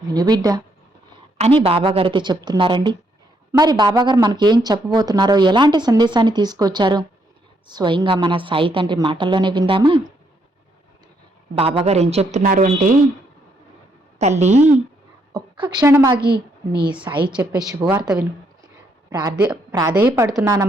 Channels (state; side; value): normal; both; correlation 0.74